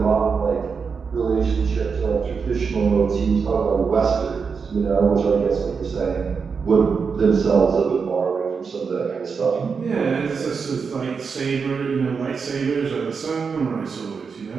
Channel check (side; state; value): left; quieter; 5.6 dB